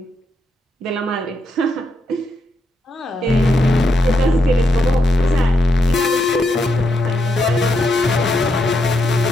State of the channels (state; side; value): normal; both; correlation 0.81